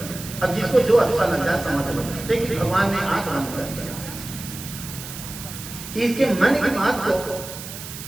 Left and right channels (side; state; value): right; noise; hiss, 11 dB below the sound